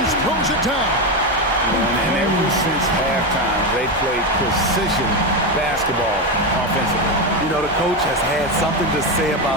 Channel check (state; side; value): noise; left; hum, 19 dB below the sound